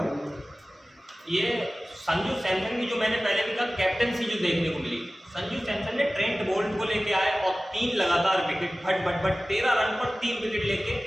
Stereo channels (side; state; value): both; normal; correlation 0.97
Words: ये संजू सैमसन की जो मैंने पहले भी कहा कैप्टनसी जो देखने को मिली, संजू सैमसन ने ट्रेंट बोल्ट को लेके आए और 3 लगातार विकेट, भट 13 रन पर 3 विकेट